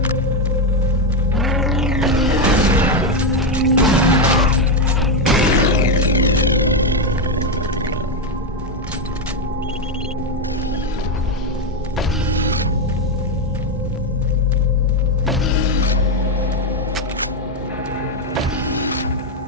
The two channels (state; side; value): normal; both; correlation 0.06